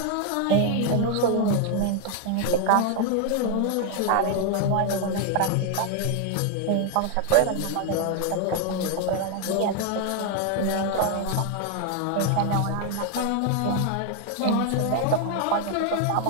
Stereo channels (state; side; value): different; both; correlation 0.01